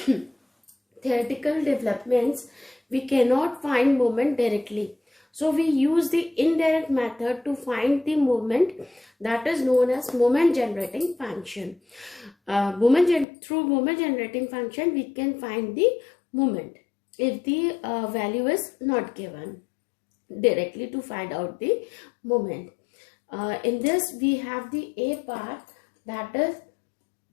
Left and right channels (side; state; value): right; drops out; at 13.2 s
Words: theoretical developments, we cannot find moment directly. So we use the indirect method to find the moment, that is known as moment generating function. Through moment generating function, we can find the moment if the value is not given directly to find out the moment. In this, we have the A part, that is